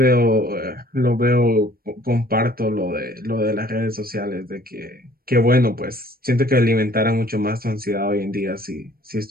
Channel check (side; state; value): left; late; 0.43 ms